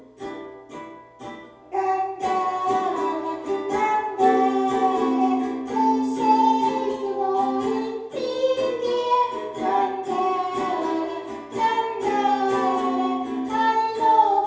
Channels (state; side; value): identical; both; correlation 1.00